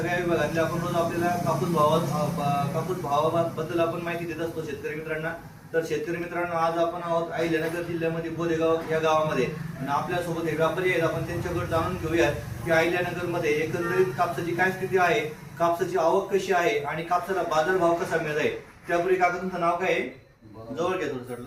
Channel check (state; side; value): identical; both; correlation 1.00